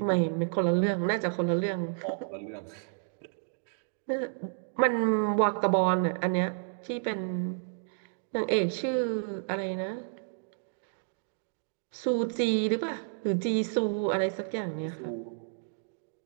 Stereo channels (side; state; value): left; silent; digital silence